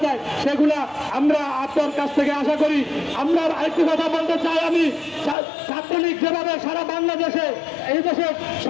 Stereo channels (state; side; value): drops out; right; at 5.4 s